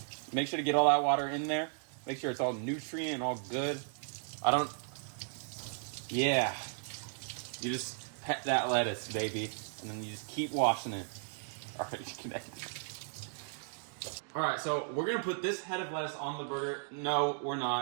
make sure to get all that water in there, make sure it's all nutrient and all good. Yeah. You just pet that lettuce, baby, and then you just keep washing it. Alright, so we're gonna put this head of lettuce on the burger. No, we're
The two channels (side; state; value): left; silent; digital silence